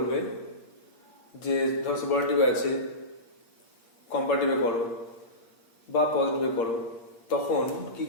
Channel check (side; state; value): right; late; 8.6 ms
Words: যে ধর সুপারলেটিভে আছে কম্পারেটিভে করো বা পজিটিভে করো, তখন কি